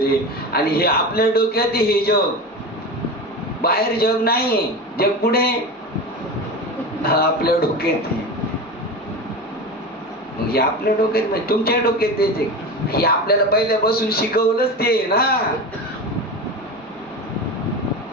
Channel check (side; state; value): both; normal; correlation 0.26